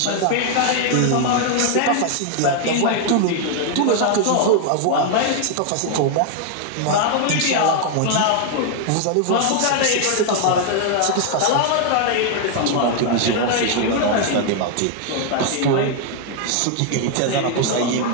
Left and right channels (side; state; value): both; different; correlation 0.00